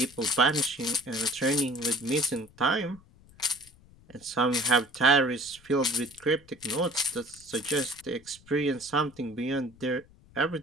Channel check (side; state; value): left; noise; rumble, 26 dB below the sound